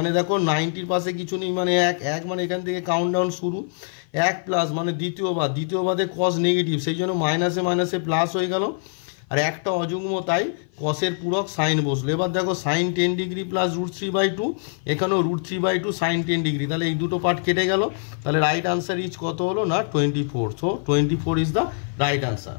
দেখো 90-র পাশে কিছু নেই মানে 1 মানে এখান থেকে কাউন্টডাউন শুরু, 1 প্লাস মানে দ্বিতীয় বাদে cos নেগেটিভ, সেই জন্য মাইনাসে মাইনাসে প্লাস হয়ে গেল, আর একটা অযুগ্ম তাই কসের পূরক সাইন বসলো। এবার দেখো সাইন 10 ডিগ্রি প্লাস √3/2, এখানেও √3/2 সাইন 10 ডিগ্রি, তাহলে এই দুটো পার্ট কেটে গেল, তাহলে রাইট আনসার ইজ কত হলো না 24, so 24 is the right answer.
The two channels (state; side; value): silent; right; 55 dB below the other